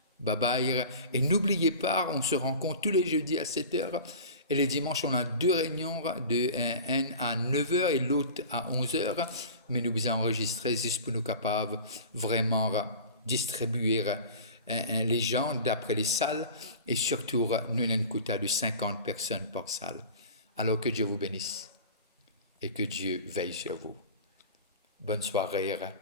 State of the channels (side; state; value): both; inverted; correlation -0.37